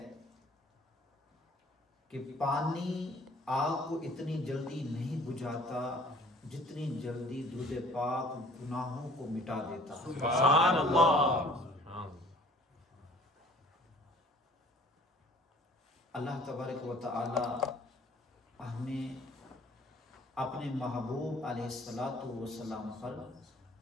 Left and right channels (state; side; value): normal; both; correlation 0.52